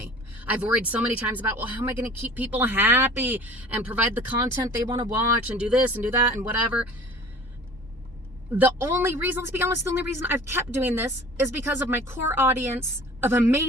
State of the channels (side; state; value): both; normal; correlation 0.45